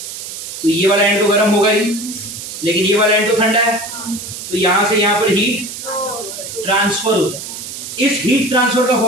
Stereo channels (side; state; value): right; noise; hiss, 9 dB below the sound